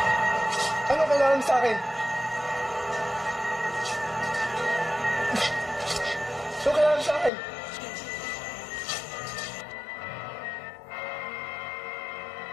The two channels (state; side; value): drops out; right; at 7.3 s